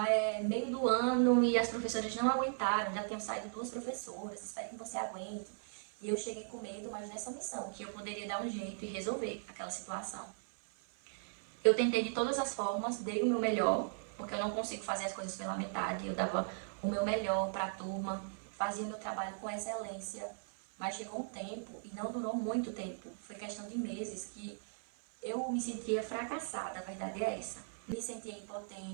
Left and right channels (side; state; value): left; silent; 53 dB below the other